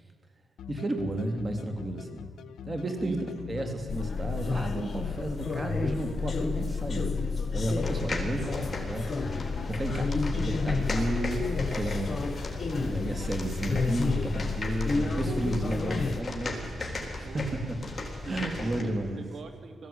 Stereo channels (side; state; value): both; normal; correlation 0.86